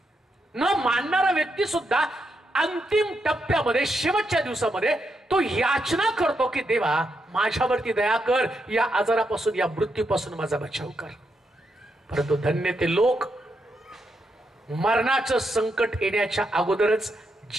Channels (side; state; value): both; normal; correlation 0.82